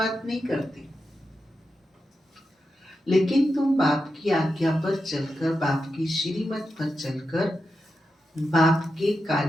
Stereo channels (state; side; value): normal; both; correlation 0.88